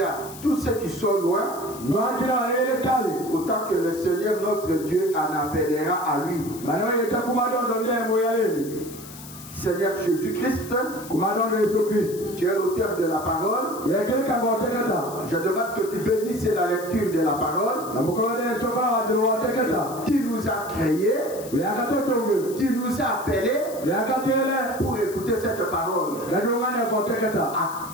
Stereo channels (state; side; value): noise; left; hiss, 16 dB below the sound